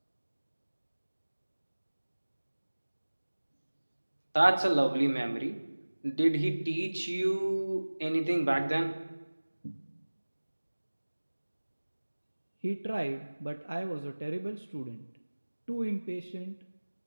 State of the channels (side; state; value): both; inverted; correlation -1.00